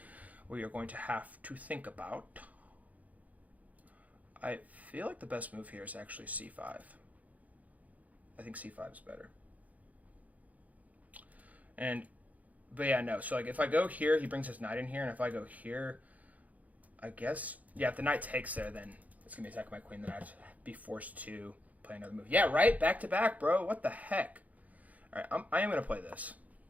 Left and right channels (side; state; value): left; late; 0.075 ms